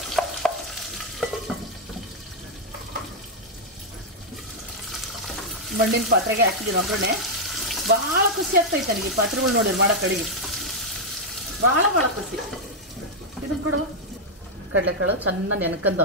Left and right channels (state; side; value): normal; both; correlation -0.01